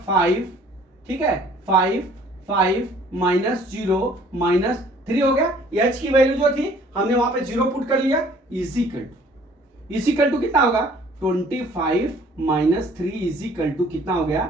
5। ठीक है, 5 माइनस 0 माइनस 3 हो गया। h की वैल्यू जो थी हमने वहां पे 0 पुट कर लिया, इज इक्वल टू कितना होगा? 25 माइनस 3 इज इक्वल टू कितना हो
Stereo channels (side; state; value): both; normal; correlation 0.55